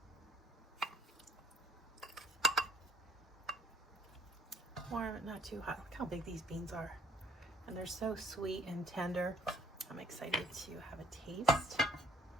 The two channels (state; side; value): normal; both; correlation 0.60